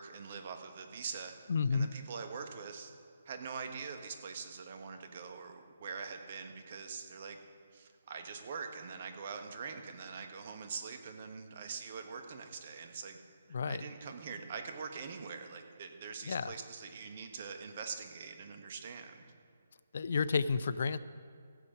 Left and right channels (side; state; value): both; inverted; correlation -0.78